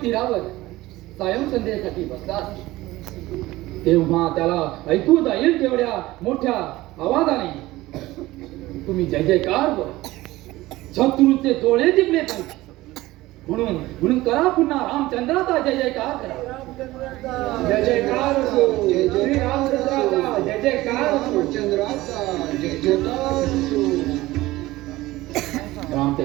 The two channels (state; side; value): quieter; left; 18.1 dB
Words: तीरावर सायं संध्येसाठी बसला आहे. तेव्हा त्याला ऐकू जाईल तेवढ्या मोठ्या आवाजाने तुम्ही जय जयकार बोला. शत्रूचे डोळे दिपले पाहिजे म्हणून करा पुन्हा रामचंद्राचा जय जयकार करा. जय जयकार असो. श्री रामचंद्राचा जय जयकार असो. रामचंद्राचा जय जयकार असो.